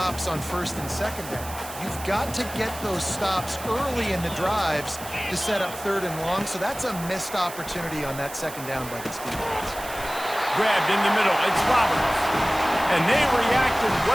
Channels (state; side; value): noise; right; hiss, 13 dB below the sound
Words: on first and second down. You've got to get those stops early in the drives to set up 3rd and long, so that's a missed opportunity on that 2nd down by this defense. Grabbed in the middle. It's Roberts. And they reacted